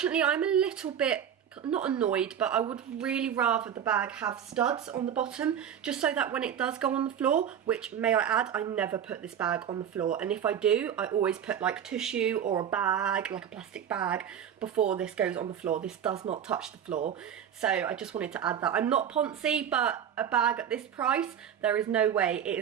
I'm a little bit not annoyed, but I would really rather the bag have studs on the bottom, just so that when it does go on the floor, which, may I add, I never put this bag on the floor, and if I do, I always put like tissue or a bag, like a plastic bag, before this goes on the floor. This does not touch the floor, so I just wanted to add that. I'm not poncy, but a bag at this price, there is no way it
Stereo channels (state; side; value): quieter; left; 9.0 dB